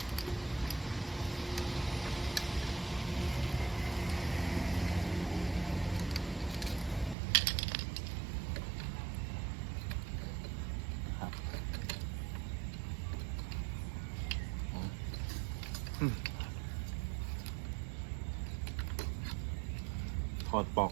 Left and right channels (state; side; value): drops out; left; at 7.2 s